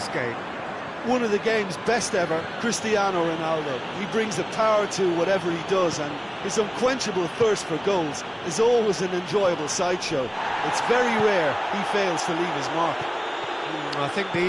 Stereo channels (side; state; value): both; identical; correlation 1.00